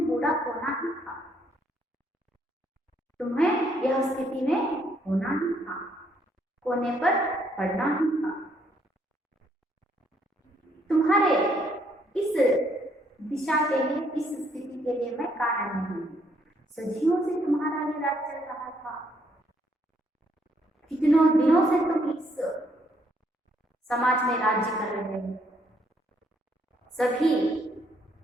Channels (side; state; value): both; normal; correlation 0.70